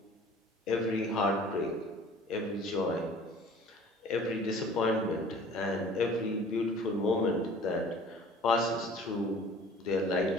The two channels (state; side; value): normal; both; correlation 0.48